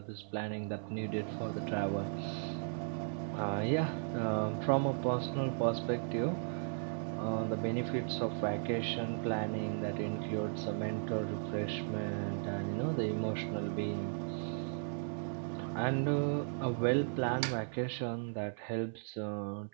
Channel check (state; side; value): silent; left; 54 dB below the other